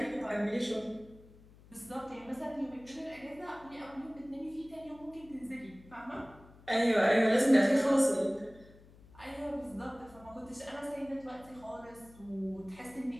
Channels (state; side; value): noise; left; hum, 23 dB below the sound